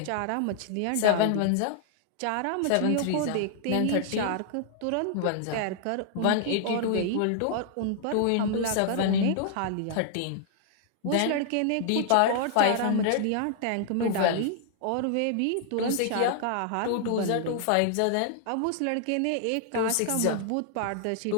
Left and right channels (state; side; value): different; both; correlation -0.01